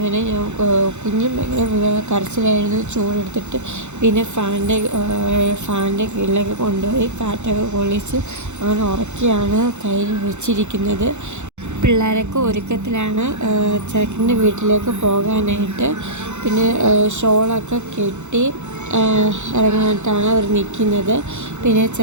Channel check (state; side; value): late; left; 0.83 ms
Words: കുഞ്ഞും ഭയങ്കര കരച്ചിലായിരുന്നു. ചൂടെടുത്തിട്ട് പിന്നെ ഫാനിൻ്റെ കീഴിലൊക്കെ കൊണ്ടുപോയി കാറ്റൊക്കെ കൊള്ളിച്ച് അങ്ങനെ ഉറക്കിയാണ് കയ്യിൽ വെച്ചിരിക്കുന്നത്. പിള്ളേരൊക്കെ ഒരുക്കത്തിലാണ് ചെറുക്കൻ്റെ വീട്ടിലേക്ക് പോകാനായിട്ട്. പിന്നെ ഷോളൊക്കെ കെട്ടി ഇറങ്ങാനായിട്ടാണ് അവർ നിൽക്കുന്നത്. പിന്നെ